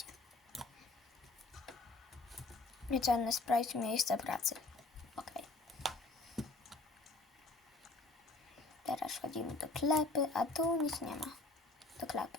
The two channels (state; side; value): quieter; right; 3.2 dB